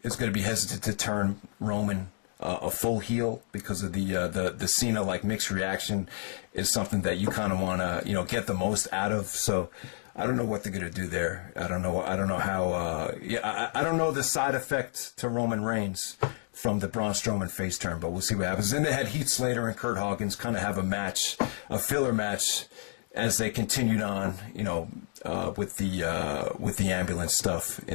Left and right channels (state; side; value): silent; right; digital silence